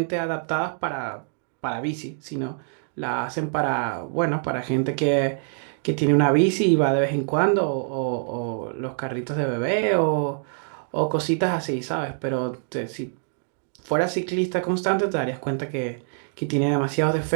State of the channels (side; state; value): left; silent; digital silence